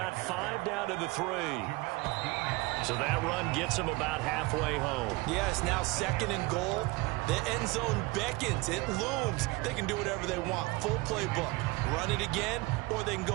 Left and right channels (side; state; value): left; quieter; 23.1 dB